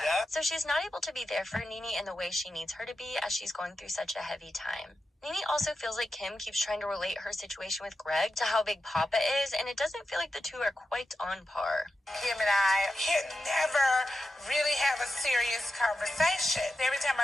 So she's not able to be there for Nene in the way she needs her to be as she's going through such a heavy time. Nene also feels like Kim keeps trying to relate her situation with Greg to how big Papa is, and it doesn't feel like the two are quite on par. Kim and I can never really have a serious conversation. Every time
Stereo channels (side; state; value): both; normal; correlation 0.90